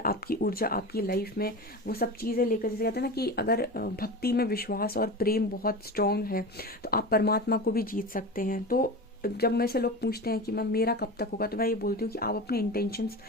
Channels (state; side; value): normal; both; correlation 0.28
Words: आपकी ऊर्जा आपकी लाइफ में वो सब चीज़ें लेकर, जैसे कहते हैं ना कि अगर भक्ति में विश्वास और प्रेम बहुत स्ट्रांग है तो आप परमात्मा को भी जीत सकते हैं। तो जब मेरे से लोग पूछते हैं कि मैम मेरा कब तक होगा, तो मैं ये बोलती हूँ कि आप अपने इंटेंशंस,